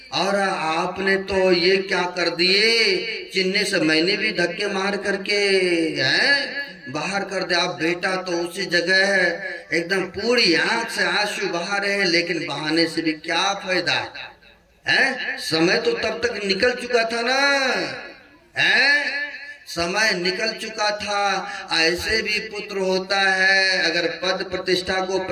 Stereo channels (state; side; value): identical; both; correlation 1.00